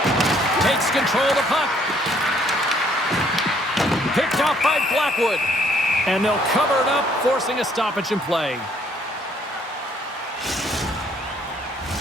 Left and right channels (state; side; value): normal; both; correlation 0.64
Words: Takes control of the puck. Picked off by Blackwood. And they'll cover it up, forcing a stoppage in play.